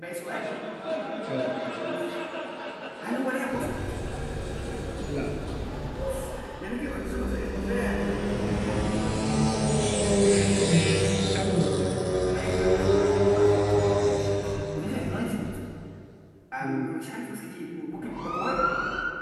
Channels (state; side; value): identical; both; correlation 1.00